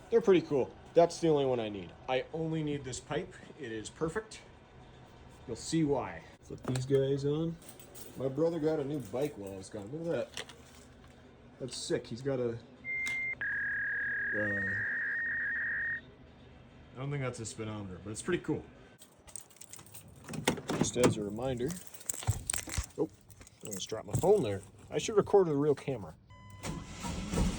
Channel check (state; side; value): identical; both; correlation 1.00